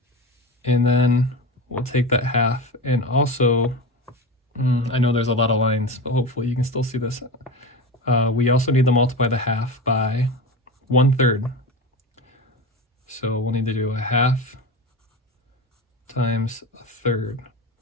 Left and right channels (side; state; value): both; normal; correlation 0.25